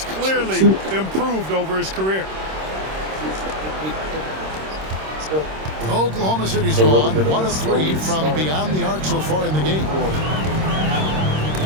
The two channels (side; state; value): left; late; 26 ms